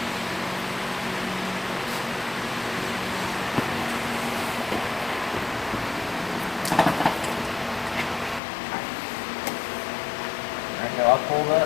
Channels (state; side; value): drops out; right; at 8.4 s